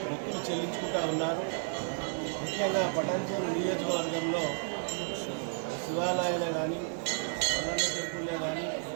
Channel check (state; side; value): silent; left; 56 dB below the other